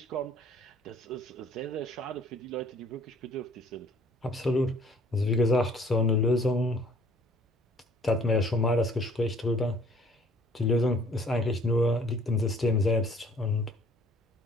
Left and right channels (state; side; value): normal; both; correlation 0.56